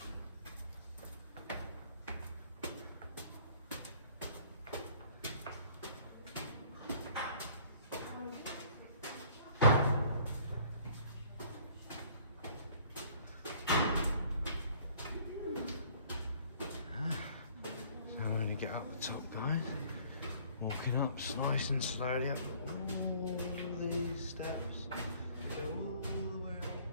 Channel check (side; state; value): both; inverted; correlation -0.56